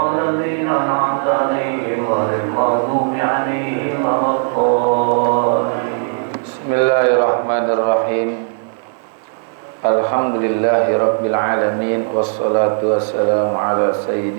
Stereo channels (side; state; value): left; silent; digital silence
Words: أنعمت عليهم غير المغضوب عليهم ولا الضالين. بسم الله الرحمن الرحيم Alhamdulillahi Rabbil Alamin wassalatu wassalamu ala